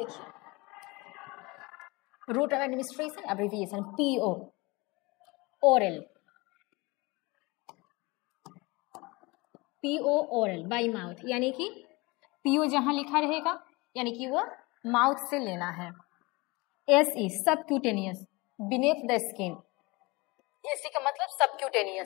route of administration abbreviation PO, oral, PO oral by mouth, यानी कि PO जहां लिखा रहेगा यानी कि वो माउथ से लेना है। SE subcutaneous, beneath the skin, SC का मतलब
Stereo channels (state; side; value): quieter; right; 24.5 dB